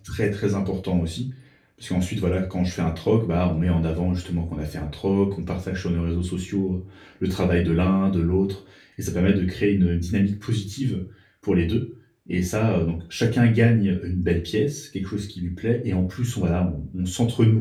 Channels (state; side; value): identical; both; correlation 1.00